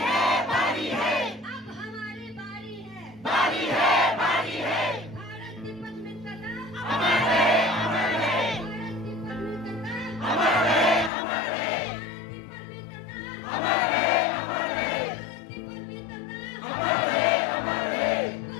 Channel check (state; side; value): drops out; right; at 11.1 s